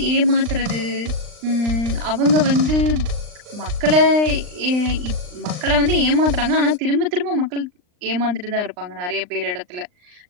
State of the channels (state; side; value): late; left; 39 ms